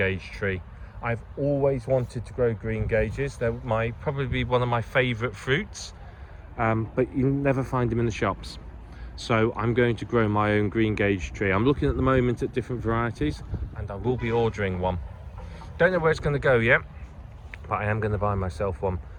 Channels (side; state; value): both; identical; correlation 1.00